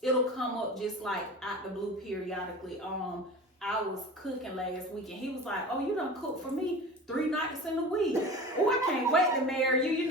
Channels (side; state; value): both; normal; correlation 0.35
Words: it'll come up just like out the blue periodically. I was cooking last week and he was like, oh, you done cook for me 3 nights in a week. Oh, I can't wait to marry you. You